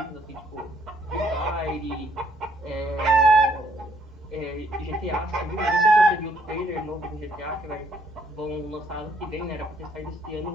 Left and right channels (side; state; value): both; normal; correlation 0.68